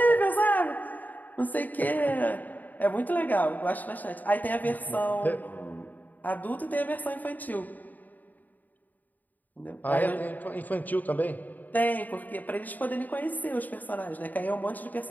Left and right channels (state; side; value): late; right; 0.083 ms